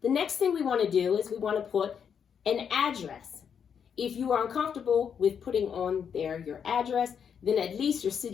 The next thing we want to do is we want to put an address. If you are uncomfortable with putting on there your address, then at least your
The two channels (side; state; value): right; quieter; 7.5 dB